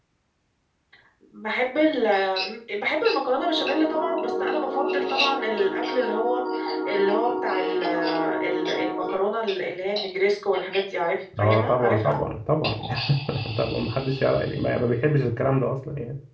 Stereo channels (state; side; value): identical; both; correlation 1.00